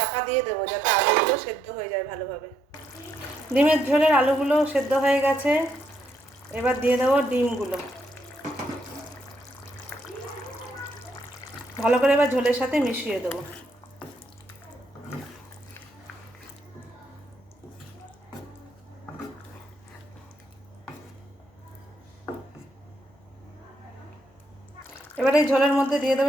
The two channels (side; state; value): both; normal; correlation 0.75